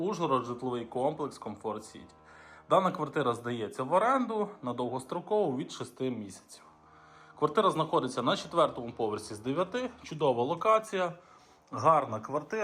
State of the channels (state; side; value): identical; both; correlation 1.00